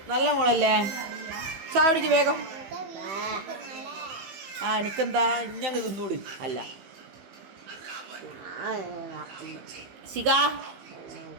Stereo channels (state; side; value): late; left; 15 ms